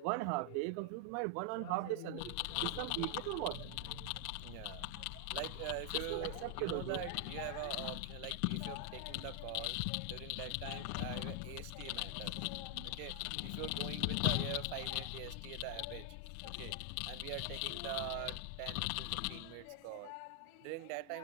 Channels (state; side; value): different; both; correlation 0.00